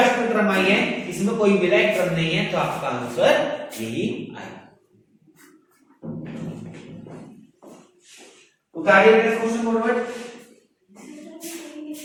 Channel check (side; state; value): both; identical; correlation 1.00